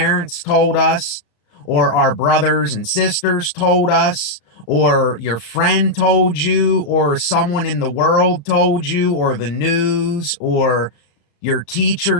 told us, or our brothers and sisters told us, or your friend told you, or someone in the world told you, or the news, or your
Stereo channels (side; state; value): right; late; 34 ms